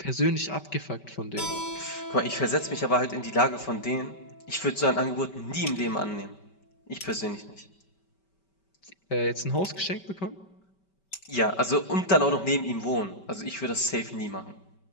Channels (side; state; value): right; late; 5.2 ms